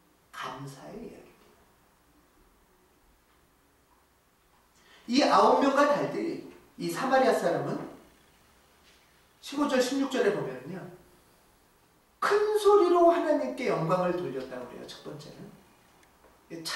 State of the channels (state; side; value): identical; both; correlation 1.00